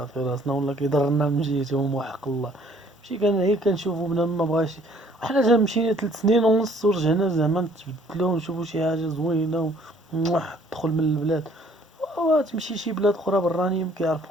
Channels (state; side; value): normal; both; correlation 0.59